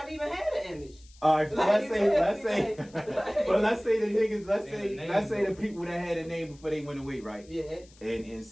even had an image. All right, so let's say the niggas, let's say the people that had a name before they went away, right? Yeah. And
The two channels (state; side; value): noise; left; hiss, 26 dB below the sound